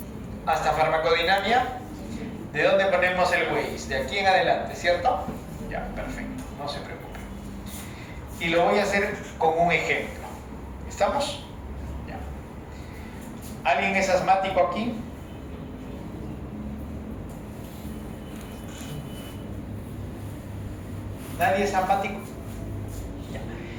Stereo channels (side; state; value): both; identical; correlation 1.00